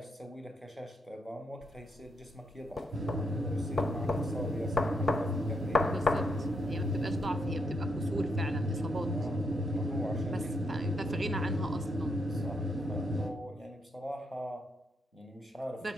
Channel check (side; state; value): both; normal; correlation 0.78